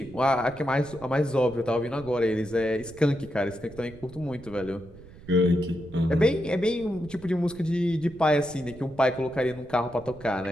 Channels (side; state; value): right; noise; rumble, 19 dB below the sound